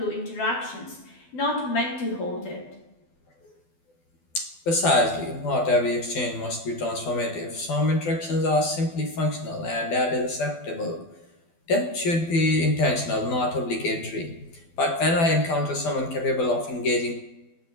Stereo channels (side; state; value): right; late; 12 ms